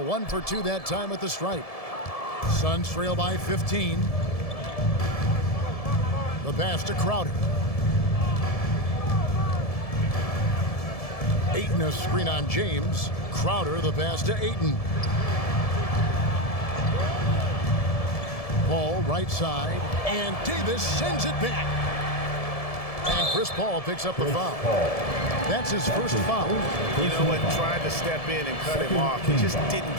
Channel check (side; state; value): right; late; 1.7 ms